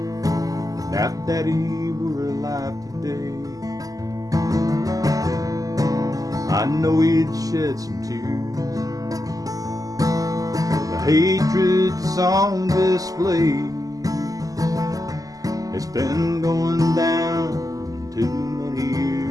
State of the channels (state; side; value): late; left; 0.17 ms